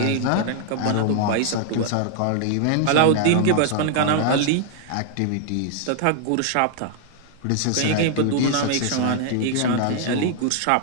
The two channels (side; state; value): both; different; correlation 0.00